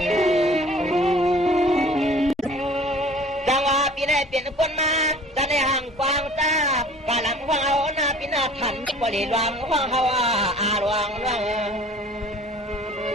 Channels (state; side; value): normal; both; correlation 0.48